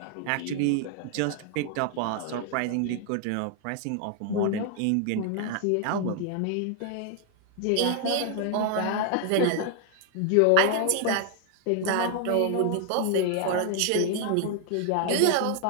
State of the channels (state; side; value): different; both; correlation 0.00